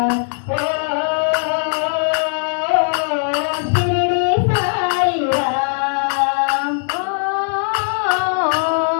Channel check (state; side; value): silent; right; 62 dB below the other